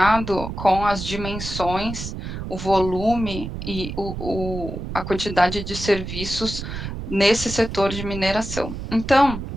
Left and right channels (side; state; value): right; noise; rumble, 7 dB below the sound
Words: com as dimensões, o volume e a quantidade de serviços nesse setor de mineração. Então,